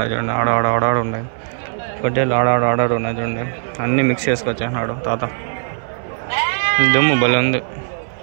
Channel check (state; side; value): silent; left; 61 dB below the other